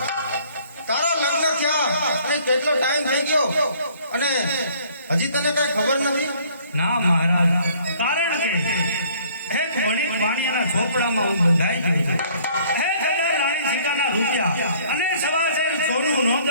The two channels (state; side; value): inverted; both; correlation -0.58